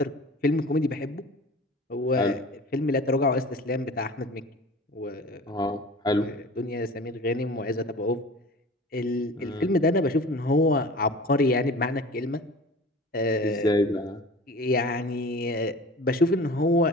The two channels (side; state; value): both; normal; correlation 0.40